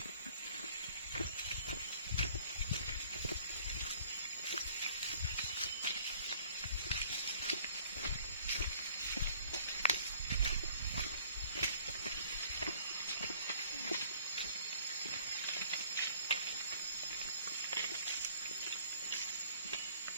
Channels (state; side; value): inverted; both; correlation -0.55